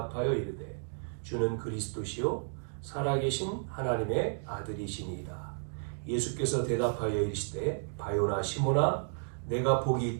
이르되 주는 그리스도시요 살아계신 하나님의 아들이시니이다. 예수께서 대답하여 이르시되 바요나 시몬아 내가 복이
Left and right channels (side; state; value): left; silent; digital silence